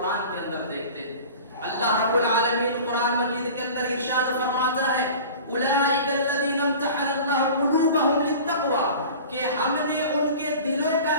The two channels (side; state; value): both; inverted; correlation -0.40